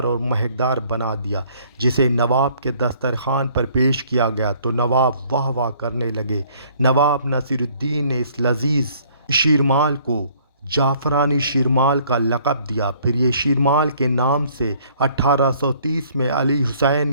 और महकदार बना दिया, जिसे नवाब के दस्तरखान पर पेश किया गया तो नवाब वाह वाह करने लगे। नवाब नसीरुद्दीन ने इस लजीज शीरमाल को जाफ़रानी शीरमाल का लक़ब दिया। फिर ये शीरमाल के नाम से 1830 में अली हुसैन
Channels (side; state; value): both; inverted; correlation -0.60